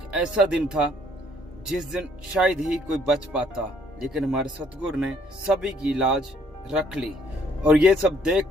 ऐसा दिन था जिस दिन शायद ही कोई बच पाता, लेकिन हमारे सतगुरु ने सभी की लाज रख ली। और ये सब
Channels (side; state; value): both; normal; correlation 0.64